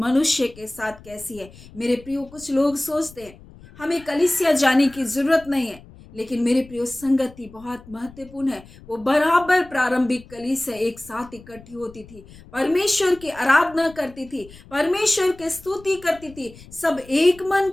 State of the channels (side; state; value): left; noise; rumble, 21 dB below the sound